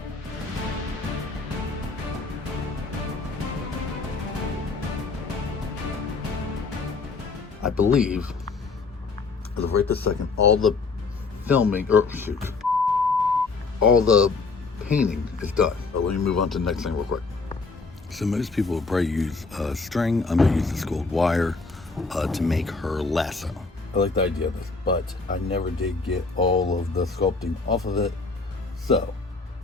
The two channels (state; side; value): quieter; right; 4.1 dB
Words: I believe, as of right this second, all the filming, or shoot, all the painting is done. But let me move on to the next thing real quick. So most people would probably use string. I'm gonna use this gold wire to make her lasso. I like the idea of this, but I never did get all of the sculpting off of it. So